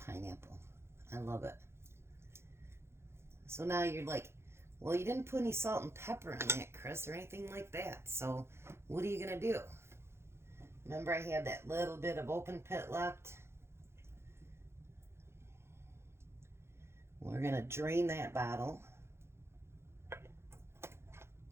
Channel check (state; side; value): late; left; 0.12 ms